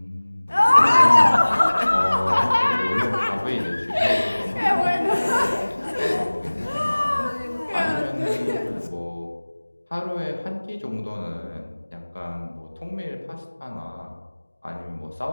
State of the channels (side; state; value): both; inverted; correlation -1.00